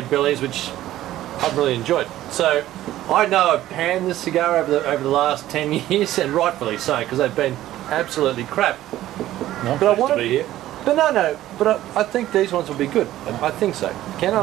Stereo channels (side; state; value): left; quieter; 14.1 dB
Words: bellies which I've really enjoyed. So I know I've panned this cigar over the last 10 years, and rightfully so, because they've been absolutely crap. But I want to be here. But but I think these ones will be good. I think so, Ken,